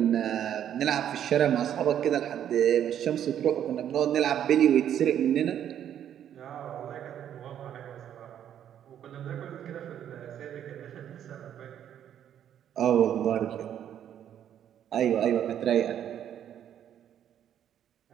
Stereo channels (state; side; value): quieter; left; 10.0 dB